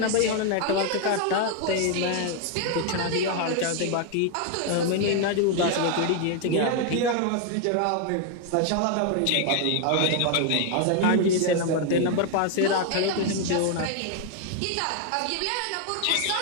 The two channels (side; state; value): both; different; correlation 0.00